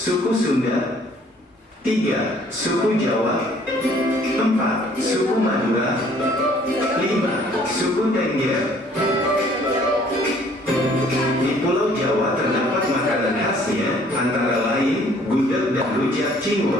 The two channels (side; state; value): both; normal; correlation 0.58